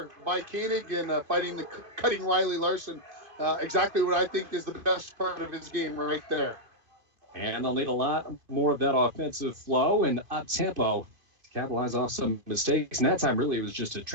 by Koenig and cutting Riley Larson. Exactly what I think is the best part of his game right there. And they'll need a lot more of that offensive flow and up-tempo to capitalize off some mistakes. And that time, really, it was just a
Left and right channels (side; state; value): left; late; 2.5 ms